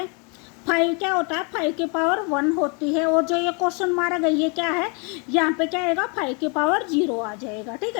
5 क्या होता है, 5 की पावर 1 होती है। और जो ये क्वेश्चन मारा गई है क्या है, यहाँ पे क्या आएगा, 5 की पावर 0 आ जाएगा, ठीक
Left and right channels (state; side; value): quieter; right; 34.3 dB